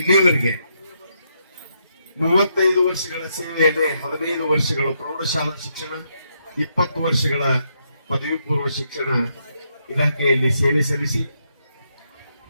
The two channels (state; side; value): inverted; both; correlation -0.78